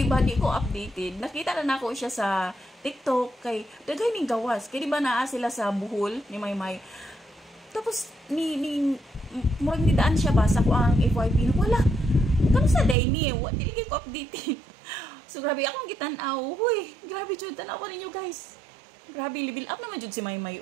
ba di ko updated. Nakita na nako siya sa TikTok kay daghay ning gawas. Kay di ba naa sila sa Bohol ni Maymay. Tapos ni murag ni daan siya ba sa ko ang FYP na wala. Kamusta day ni? Wa dili ko updated. So grabe akong gitan-aw. Hoy, grabe jud tan-aw ninyo guys. Grabe, level up naman jud si Maymay.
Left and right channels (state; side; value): drops out; left; at 13.0 s